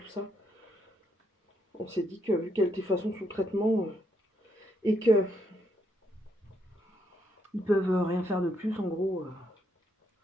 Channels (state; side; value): normal; both; correlation 0.76